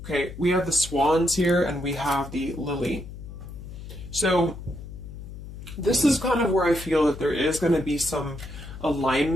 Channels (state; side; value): noise; left; hum, 12 dB below the sound